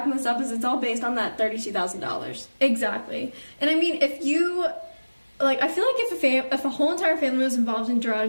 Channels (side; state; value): both; inverted; correlation -1.00